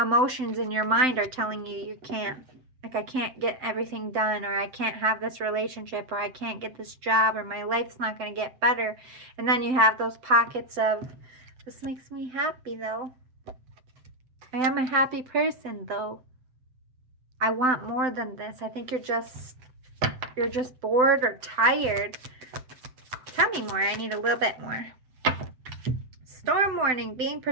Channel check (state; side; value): late; left; 7.8 ms